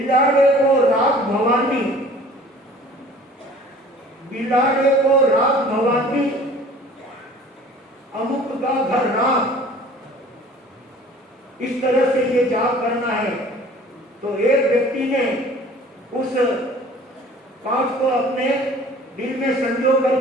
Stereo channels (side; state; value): both; normal; correlation 0.48